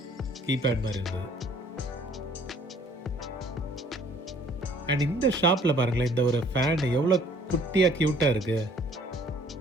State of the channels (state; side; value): normal; both; correlation 0.57